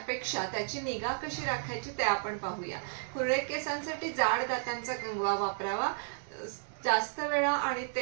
त्याची निगा कशी राखायची ते आपण पाहूया. कुरळे केसांसाठी जाड दातांचा कंगवा वापरावा. जास्त वेळा आणि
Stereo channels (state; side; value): silent; left; digital silence